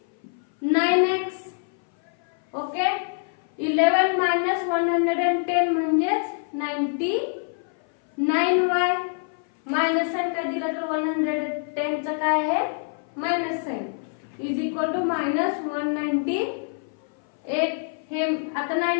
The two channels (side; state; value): right; silent; 58 dB below the other